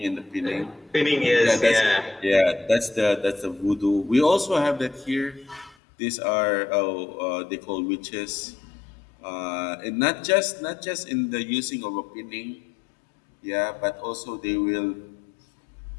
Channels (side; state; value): right; drops out; at 5.8 s